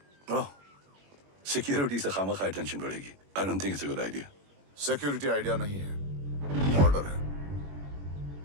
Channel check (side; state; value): left; late; 21 ms